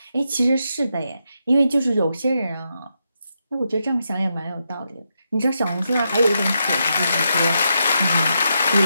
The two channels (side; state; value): both; inverted; correlation -0.83